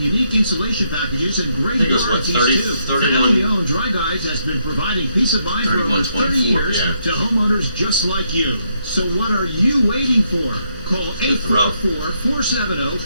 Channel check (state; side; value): inverted; both; correlation -0.76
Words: unique insulation packages and great I think it was, what, warranties 30, too. 31? Family-owned Dry Guys has been providing peace of mind for over 30 years to homeowners just like you. So what are you waiting for? Call